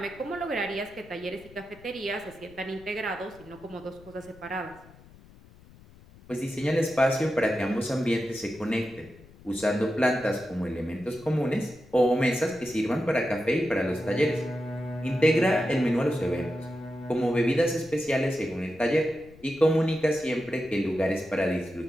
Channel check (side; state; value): left; noise; rumble, 23 dB below the sound